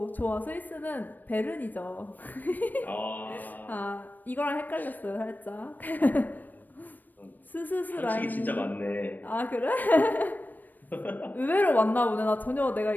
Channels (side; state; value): right; late; 0.088 ms